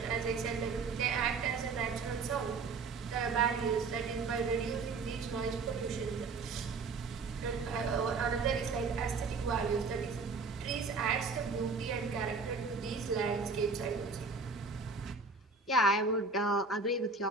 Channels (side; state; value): left; quieter; 4.3 dB